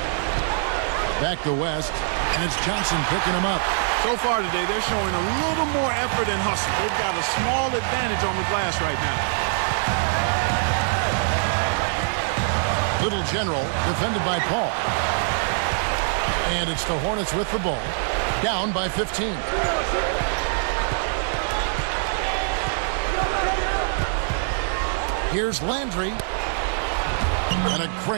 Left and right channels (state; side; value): silent; left; digital silence